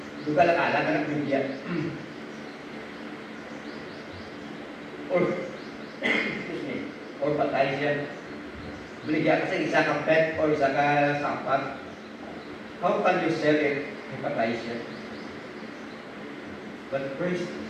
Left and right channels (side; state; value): both; identical; correlation 1.00